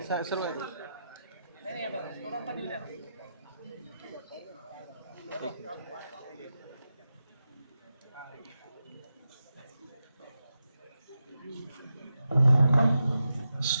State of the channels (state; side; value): inverted; both; correlation -0.89